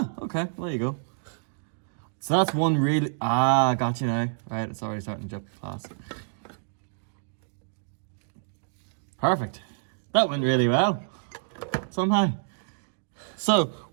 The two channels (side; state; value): left; silent; digital silence